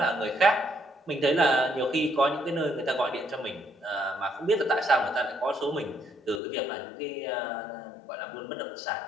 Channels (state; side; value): drops out; right; at 6.4 s